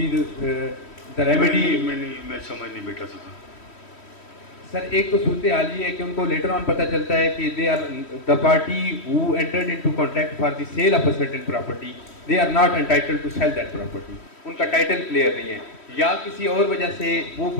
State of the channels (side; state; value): right; late; 3.1 ms